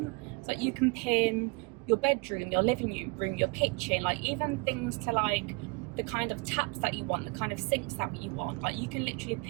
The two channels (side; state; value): left; quieter; 28.7 dB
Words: So you can pin your bedroom, your living room, your kitchen, like even things to like the kind of taps that you want, the kind of sinks that you want. Like you can literally